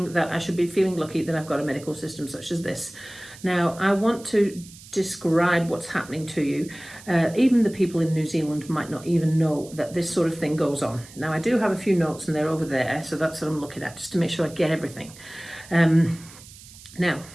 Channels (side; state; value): right; noise; hiss, 19 dB below the sound